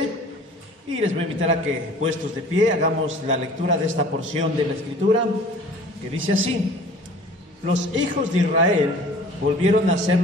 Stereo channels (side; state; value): both; normal; correlation 0.47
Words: y les voy a invitar a que, puestos de pie, hagamos la lectura de esta porción de la Escritura, que dice así: Los hijos de Israel volvieron a hacer